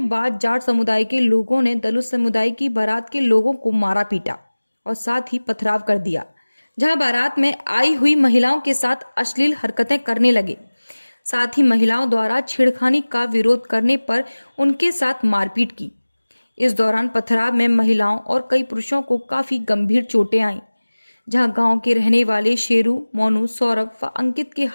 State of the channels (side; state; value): both; inverted; correlation -1.00